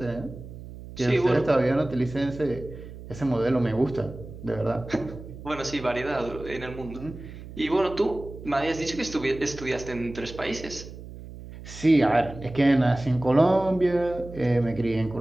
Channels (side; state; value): right; noise; hum, 14 dB below the sound